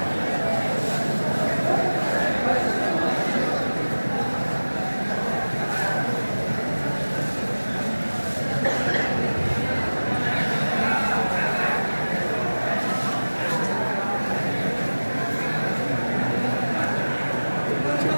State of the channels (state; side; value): inverted; both; correlation -1.00